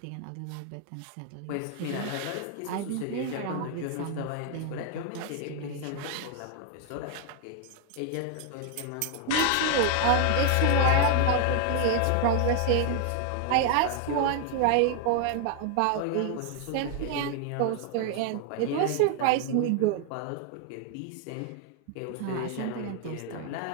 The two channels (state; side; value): different; both; correlation 0.00